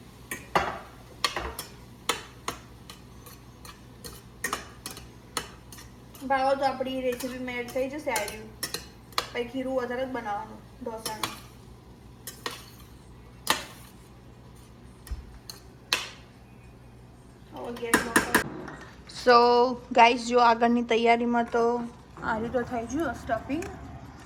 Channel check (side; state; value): both; identical; correlation 1.00